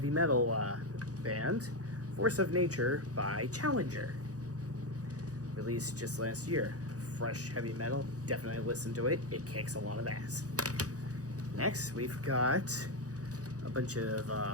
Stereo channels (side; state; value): left; late; 0.67 ms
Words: metal band, Force of Nature by Challenger. Released just last year. Fresh heavy metal, definitely listen to it, it kicks a lot of ass. Next, we've got a bunch of